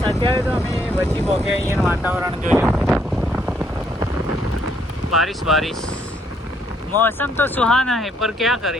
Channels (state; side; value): normal; both; correlation 0.70